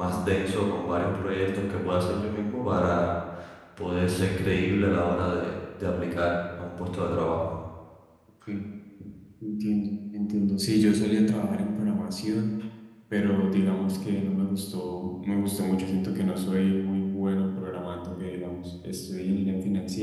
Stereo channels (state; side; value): identical; both; correlation 1.00